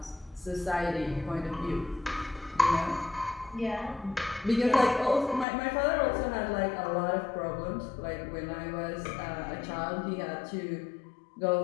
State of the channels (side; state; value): right; drops out; at 5.5 s